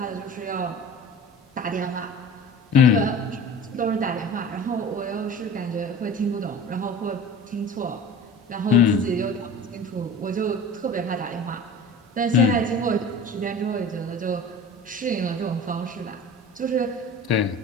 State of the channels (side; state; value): both; normal; correlation 0.38